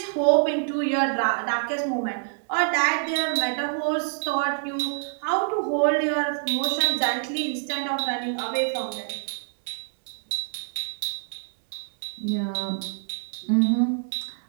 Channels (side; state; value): left; silent; digital silence